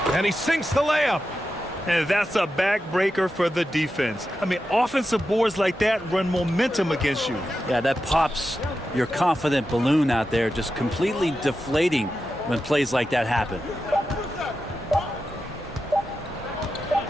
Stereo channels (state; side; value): normal; both; correlation 0.90